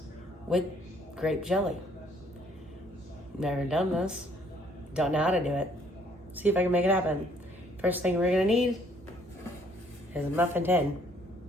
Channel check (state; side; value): normal; both; correlation 0.63